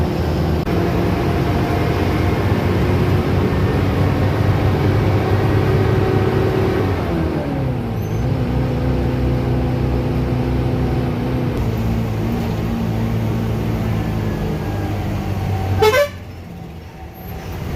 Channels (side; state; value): both; identical; correlation 1.00